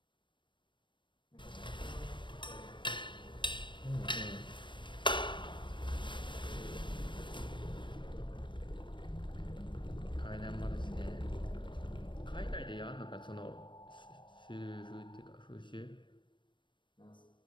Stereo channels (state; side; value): late; right; 0.23 ms